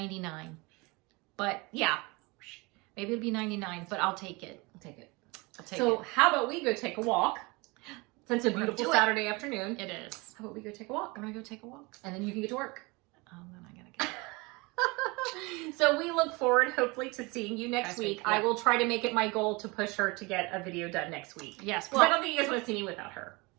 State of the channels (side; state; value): left; quieter; 25.9 dB